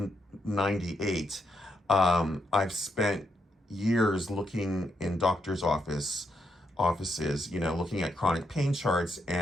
'98, I've spent years looking in doctors' offices, looking at chronic pain charts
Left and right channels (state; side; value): normal; both; correlation 0.80